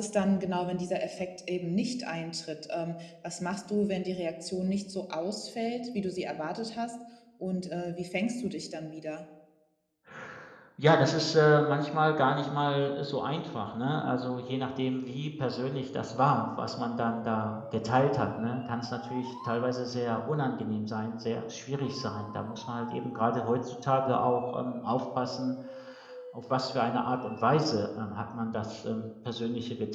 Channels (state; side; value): identical; both; correlation 1.00